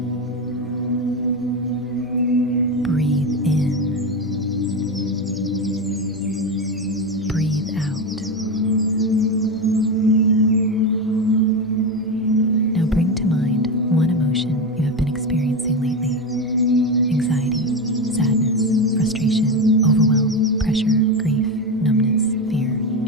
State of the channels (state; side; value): normal; both; correlation 0.16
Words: Breathe in. Breathe out. Now bring to mind one emotion you have been experiencing lately. Anxiety, sadness, frustration, overwhelm, pressure, grief, numbness, fear,